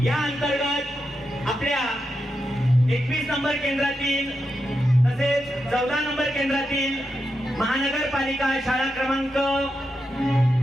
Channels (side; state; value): right; noise; rumble, 30 dB below the sound